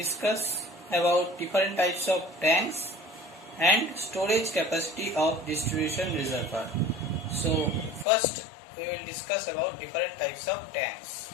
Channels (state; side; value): drops out; right; at 8.1 s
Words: about different types of tanks and storage capacity of distribution reservoir. So first we will discuss about different types of tanks.